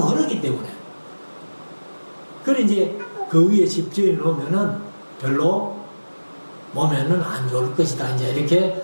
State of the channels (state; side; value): inverted; both; correlation -1.00